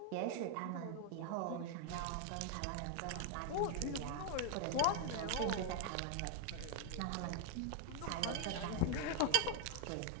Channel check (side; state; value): both; different; correlation 0.00